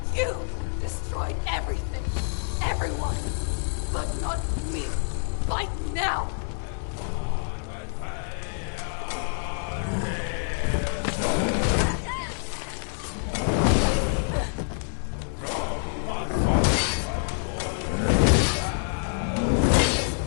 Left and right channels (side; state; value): right; silent; 60 dB below the other